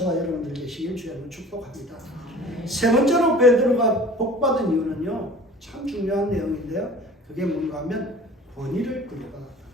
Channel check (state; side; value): normal; both; correlation 0.44